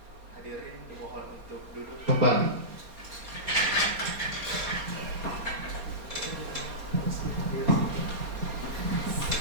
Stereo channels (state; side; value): late; left; 4.2 ms